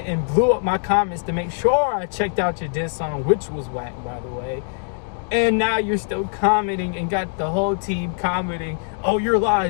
and blew up my comments to make sure I checked out your diss song, which was whack, by the way. And now you're still commenting and got the whole team commenting, oh, you're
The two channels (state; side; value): silent; right; digital silence